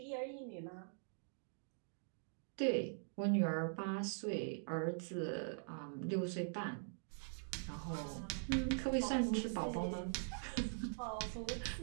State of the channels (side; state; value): left; silent; digital silence